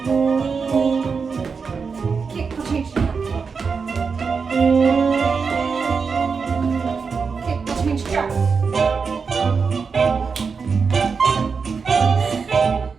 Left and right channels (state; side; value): quieter; left; 5.3 dB